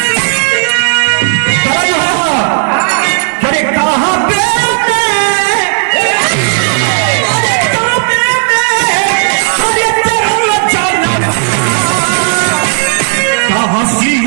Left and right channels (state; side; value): silent; left; digital silence